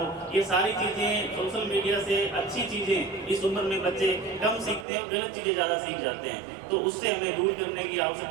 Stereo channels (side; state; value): left; drops out; at 4.9 s